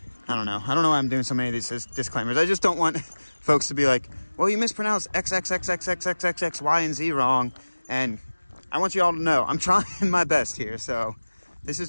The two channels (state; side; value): inverted; both; correlation -1.00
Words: I don't know why I'm doing so many of these disclaimers. I just don't want folks to be like, well, you mispronounced X, Y, and Z wrong. And I want you all to know I'm trying my best here. So this is